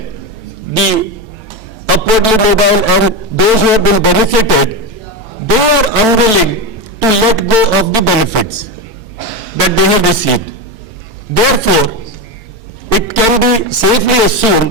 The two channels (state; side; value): late; left; 4.5 ms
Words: the upwardly mobile and those who have been benefited, they are unwilling to let go of the benefits that they have received. Therefore, it can be safely